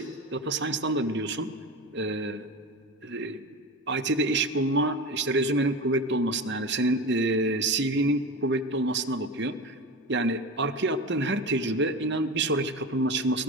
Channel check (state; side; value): normal; both; correlation 0.27